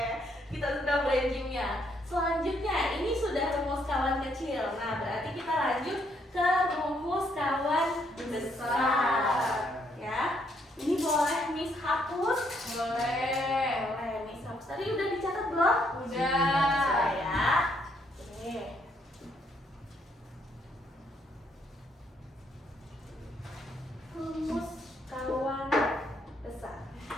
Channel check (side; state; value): both; normal; correlation 0.72